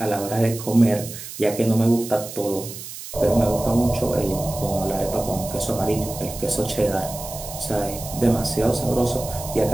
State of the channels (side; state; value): right; noise; hiss, 11 dB below the sound